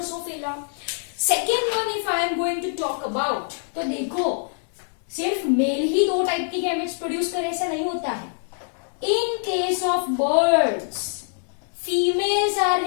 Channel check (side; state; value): right; silent; digital silence